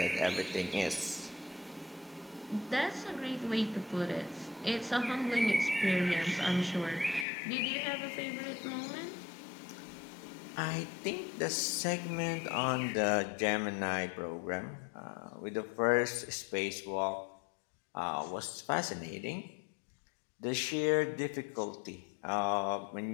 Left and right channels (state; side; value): drops out; right; at 7.2 s